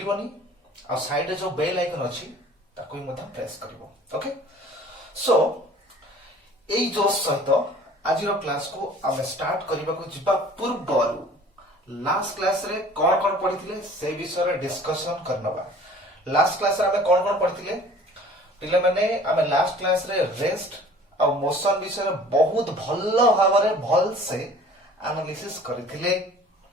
और साइड रे जो बेल आइकन अछि ताको भी मथा प्रेस करिवो. ओके? सो एई जो सहित आज रो क्लास को हम स्टार्ट करबा को जिबा पूर्व लास्ट क्लास रे कोन कोन पढिथिले से विषय रे डिस्कशन करनबा. लास्ट क्लास रे हम कोन कोन पढिथिले पिले माने हम लास्ट क्लास रे रेस्ट और मोशन विषय रे बहुत भल्लो भाबरे भल से एनालिसिस करथिले.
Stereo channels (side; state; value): both; normal; correlation 0.49